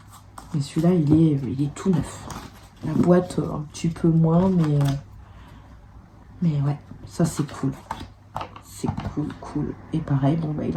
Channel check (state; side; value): identical; both; correlation 1.00